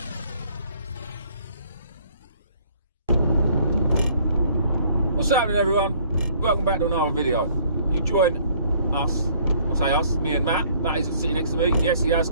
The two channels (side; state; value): both; inverted; correlation -0.60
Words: What's happening, everyone? Welcome back to another video. You join us, I say us, me and Matt. Matt is sitting next to me. Yes, he has